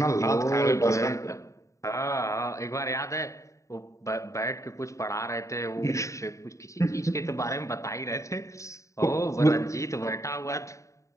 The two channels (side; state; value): right; late; 0.15 ms